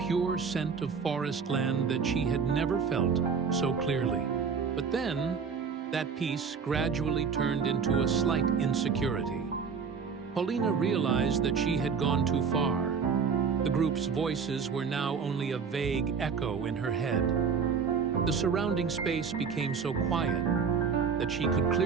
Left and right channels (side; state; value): left; quieter; 6.0 dB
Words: scent of forest land that she had never felt so clearly. But then, that peace gradually turned into a slight insecurity. Paulina realized that she had gone too far. The group's voices were now only a vague echo in her head. The surrounding space became so quiet that she could